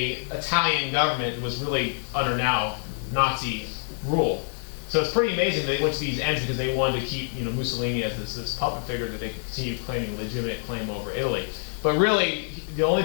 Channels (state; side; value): silent; right; digital silence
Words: Italian government that was really under now Nazi rule. So it's pretty amazing they went to these ends because they wanted to keep, you know, Mussolini as this puppet figure that they could continue claiming a legitimate claim over Italy. But really, the only